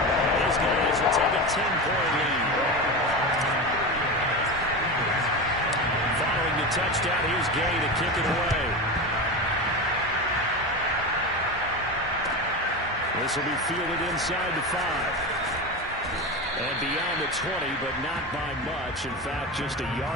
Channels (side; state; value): both; normal; correlation 0.22